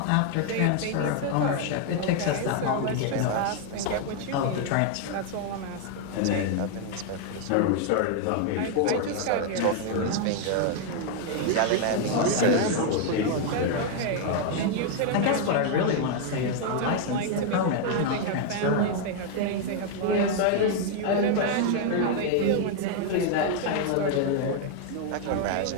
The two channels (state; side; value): different; both; correlation 0.00